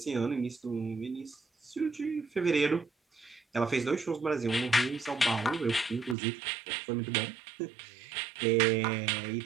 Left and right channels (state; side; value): drops out; left; at 6.2 s